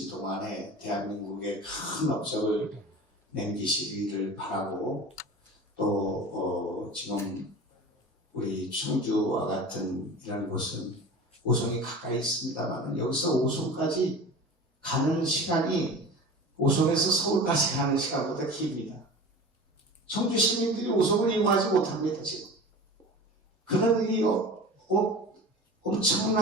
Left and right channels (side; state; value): both; normal; correlation 0.36